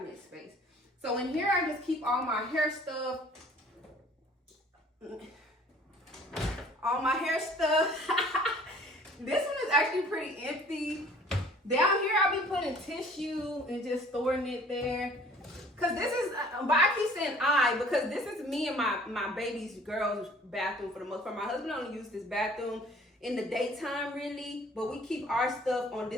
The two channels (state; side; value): normal; both; correlation 0.52